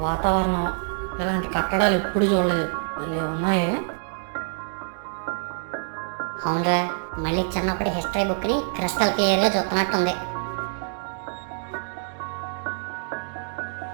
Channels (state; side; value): silent; left; digital silence